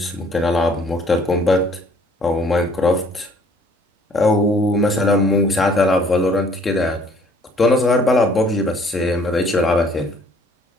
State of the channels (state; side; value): normal; both; correlation 0.58